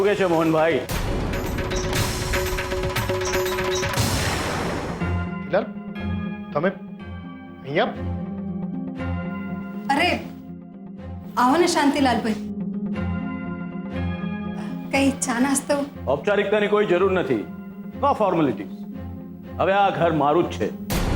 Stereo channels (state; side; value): identical; both; correlation 1.00